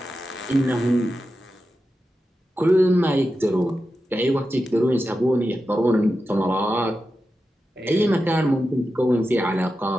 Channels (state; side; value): normal; both; correlation 0.91